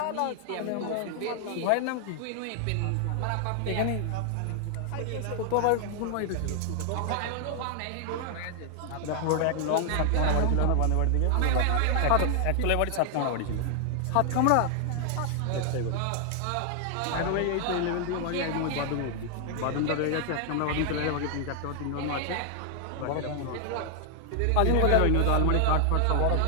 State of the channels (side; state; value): both; different; correlation 0.00